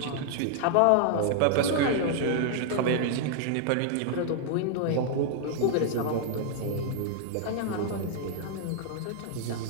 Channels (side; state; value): both; different; correlation -0.01